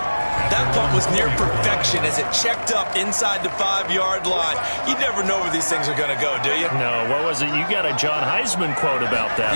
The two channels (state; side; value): inverted; both; correlation -1.00